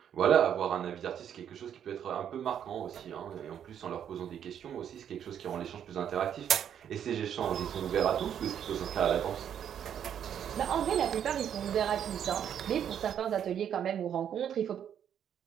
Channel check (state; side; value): quieter; left; 9.1 dB